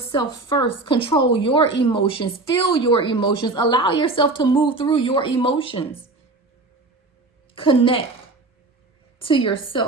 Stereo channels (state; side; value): quieter; left; 3.2 dB